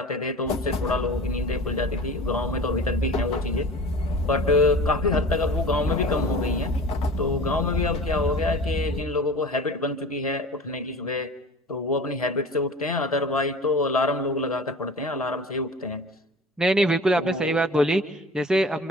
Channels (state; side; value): normal; both; correlation 0.39